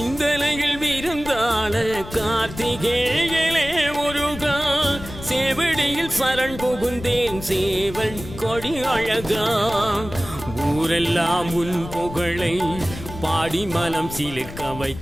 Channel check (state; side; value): noise; left; rumble, 12 dB below the sound